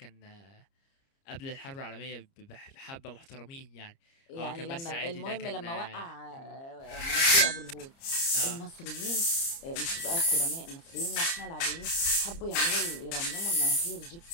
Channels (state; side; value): late; right; 30 ms